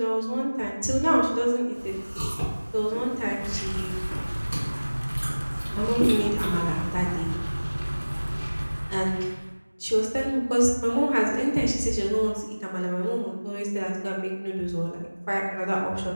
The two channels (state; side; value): inverted; both; correlation -1.00